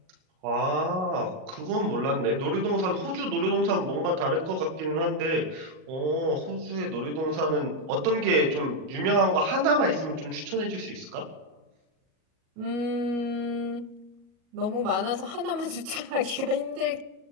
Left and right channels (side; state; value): left; late; 38 ms